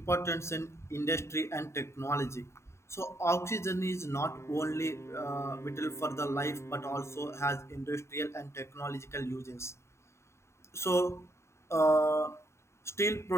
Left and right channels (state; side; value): late; right; 0.13 ms